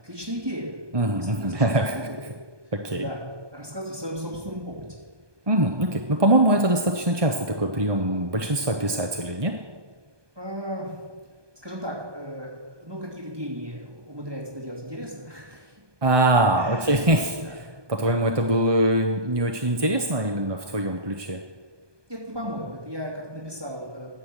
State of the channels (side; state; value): left; late; 1.2 ms